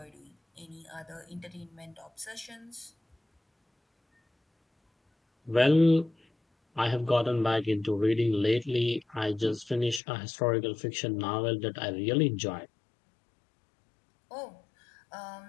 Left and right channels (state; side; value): drops out; right; at 10.0 s